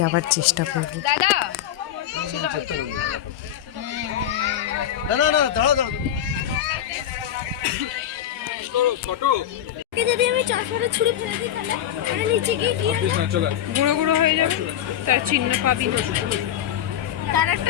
চেষ্টা করব। दादा ना ना ना दाड़ा दाड़ा फोटो কে যদি আমি চাষরে ছুরি ফেলে দিই তাহলে আরে নিচে গিয়ে কি হবে? चला গুঁড়ো গুঁড়ো হয়ে যাবে, তার চিহ্ন পাবি। তার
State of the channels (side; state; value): right; quieter; 10.8 dB